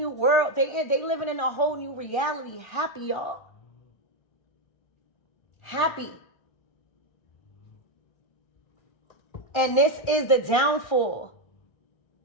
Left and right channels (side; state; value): right; late; 1.3 ms